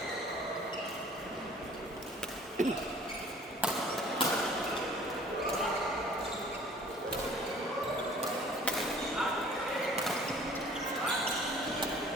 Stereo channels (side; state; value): both; normal; correlation 0.51